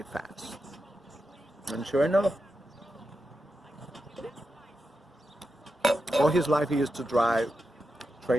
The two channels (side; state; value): both; normal; correlation 0.89